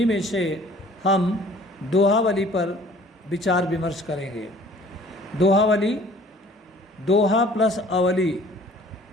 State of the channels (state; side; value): normal; both; correlation 0.52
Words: में से हम दोहावली पर विचार विमर्श करेंगे। दोहावली, दोहा प्लस अवली।